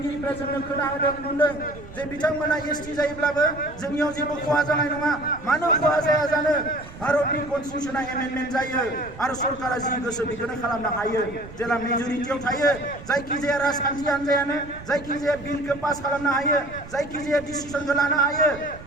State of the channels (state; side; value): noise; right; rumble, 16 dB below the sound